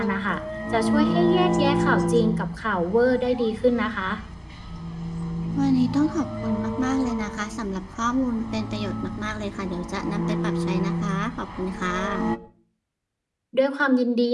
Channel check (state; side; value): identical; both; correlation 1.00